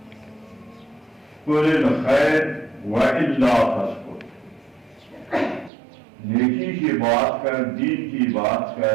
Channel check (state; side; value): drops out; left; at 5.7 s